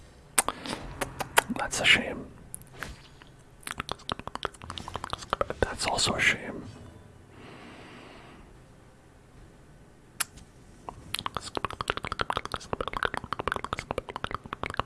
That's a shame. That's also a shame.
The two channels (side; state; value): both; identical; correlation 1.00